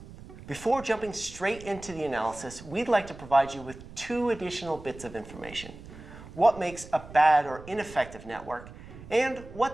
Before jumping straight into the analysis, we'd like to provide you with 2 additional bits of information. What makes a bad or ineffective network, and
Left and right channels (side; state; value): right; noise; rumble, 16 dB below the sound